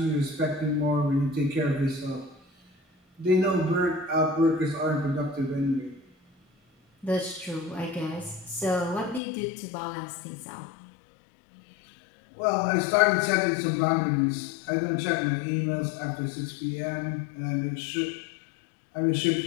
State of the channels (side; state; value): right; drops out; at 9.2 s